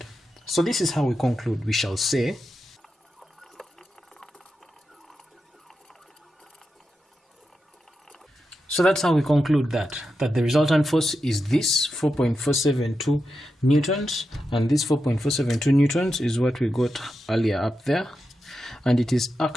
So this is how we conclude. We shall say so that's how we conclude that the resultant force is this 4.472 newtons, and this 4.472 newtons is what we got earlier up there, and it is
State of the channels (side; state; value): both; normal; correlation 0.88